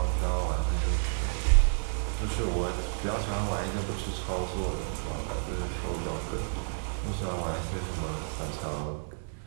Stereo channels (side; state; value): left; silent; digital silence